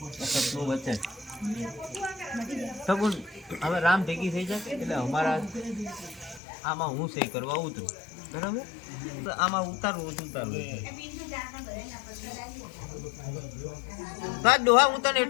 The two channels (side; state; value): right; drops out; at 6.4 s